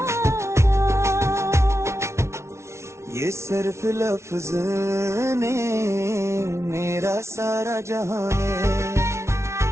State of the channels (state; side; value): late; left; 0.13 ms